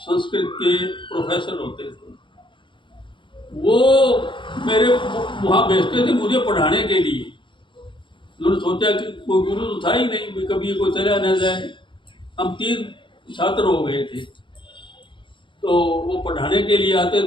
के प्रोफेसर होते थे, वो मेरे वहाँ भेजते थे मुझे पढ़ाने के लिए। उन्होंने सोचा कि कोई गुरु तो था ही नहीं, कभी कोई चला न जाए। हम 3 छात्र हो गए थे, तो वो पढ़ाने के लिए आते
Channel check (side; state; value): right; late; 0.24 ms